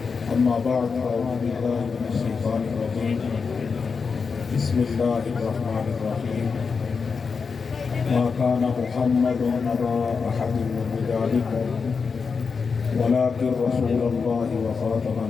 اما بعد فاعوذ بالله من الشيطان الرجيم بسم الله الرحمن الرحيم ما كان محمد أبا أحد من رجالكم ولكن رسول الله وخاتم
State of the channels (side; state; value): right; quieter; 5.3 dB